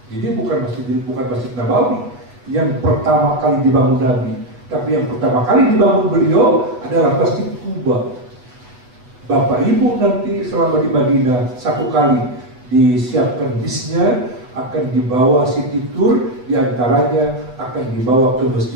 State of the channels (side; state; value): left; late; 8.1 ms